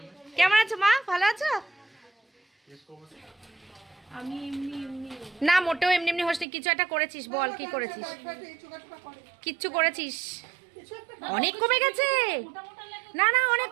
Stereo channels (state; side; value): drops out; left; at 6.5 s